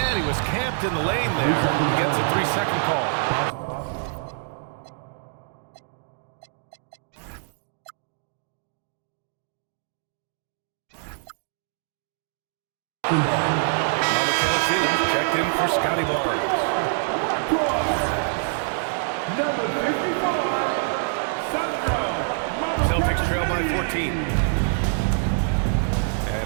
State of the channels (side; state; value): left; silent; digital silence